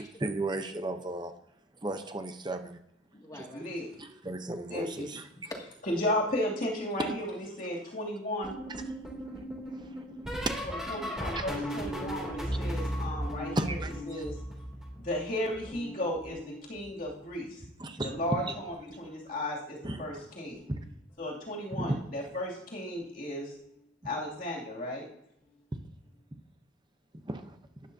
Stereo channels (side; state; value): both; normal; correlation 0.46